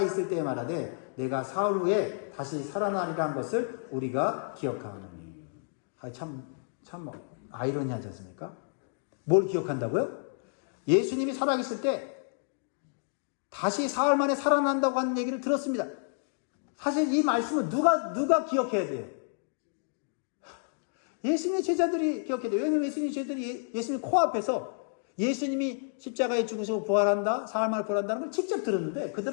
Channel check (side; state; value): right; silent; digital silence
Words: 때에 말하되 내가 사흘 후에 다시 살아나리라 한 것을 우리가 기억하노니. 참 아이러니하지 않습니까? 뭘 기억한다고요? 예수님이 살아계실 때 다시 사흘 만에 살아난다고 하는 얘기를 들었습니다. 사실 이 말씀은 누가 기억해야 돼요? 예수님의 제자들이 기억해야 돼요. 왜냐하면 예수님의 제자들이 예수님 코앞에서 예수님이 십자가에 죽으시고 부활한다, 사흘 만에 부활한다는 걸 직접 들었는데